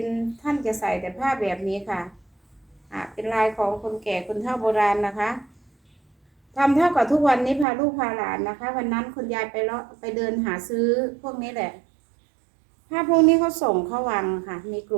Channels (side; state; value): left; drops out; at 7.7 s